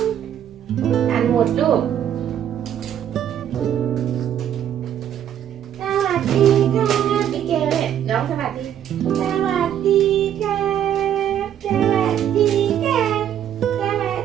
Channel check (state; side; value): quieter; left; 10.1 dB